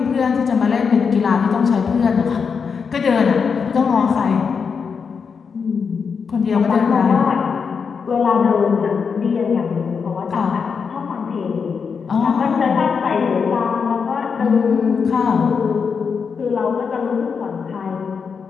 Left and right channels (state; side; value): quieter; right; 5.9 dB